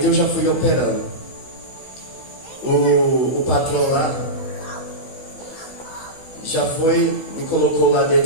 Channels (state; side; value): late; right; 16 ms